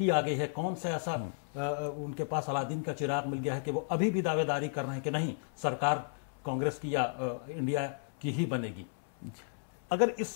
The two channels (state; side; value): silent; right; 55 dB below the other